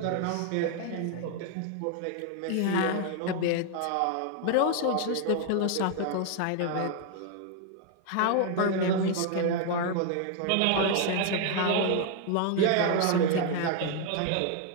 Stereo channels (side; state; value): both; different; correlation 0.00